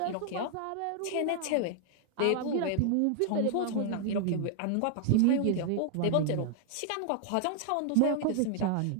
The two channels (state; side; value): different; both; correlation 0.00